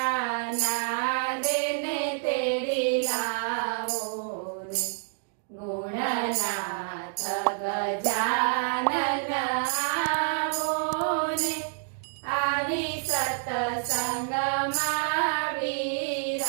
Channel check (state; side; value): silent; left; digital silence